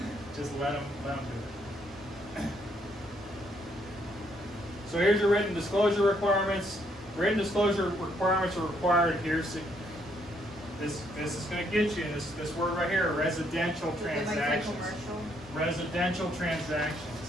Just let them do it. So here's your written disclosure requirements. Written disclosure requirements are required here. So this is going to get you this word right here: residential transactions. Residential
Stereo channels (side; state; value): both; normal; correlation 0.71